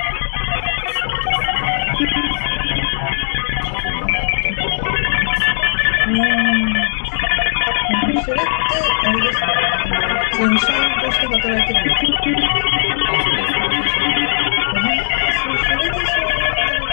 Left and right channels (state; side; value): silent; right; 68 dB below the other